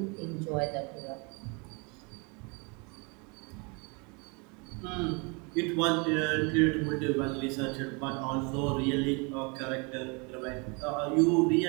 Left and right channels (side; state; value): left; quieter; 31.5 dB